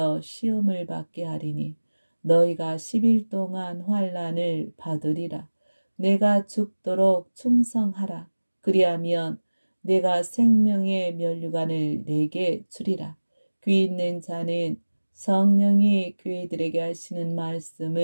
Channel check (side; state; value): both; inverted; correlation -1.00